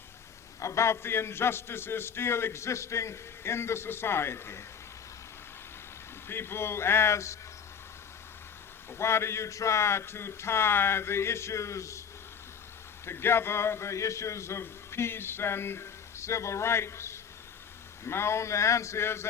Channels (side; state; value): right; quieter; 7.1 dB